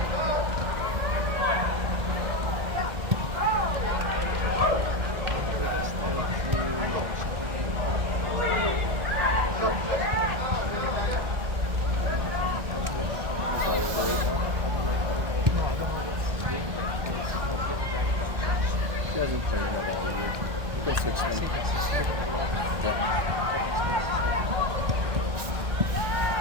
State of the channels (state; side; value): late; left; 1.6 ms